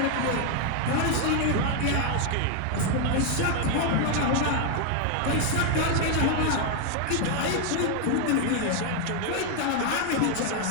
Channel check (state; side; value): different; both; correlation 0.01